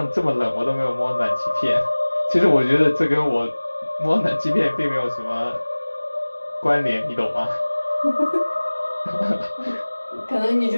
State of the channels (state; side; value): inverted; both; correlation -1.00